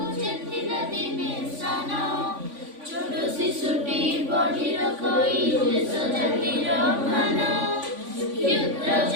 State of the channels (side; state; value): left; late; 3.5 ms